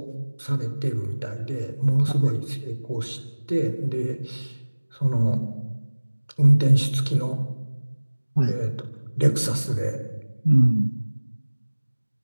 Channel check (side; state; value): both; inverted; correlation -1.00